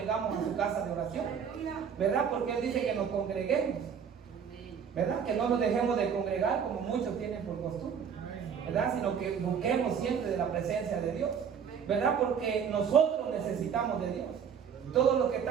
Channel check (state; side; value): quieter; left; 7.3 dB